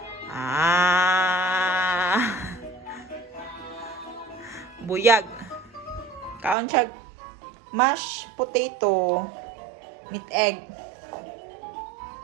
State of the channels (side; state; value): left; drops out; at 6.6 s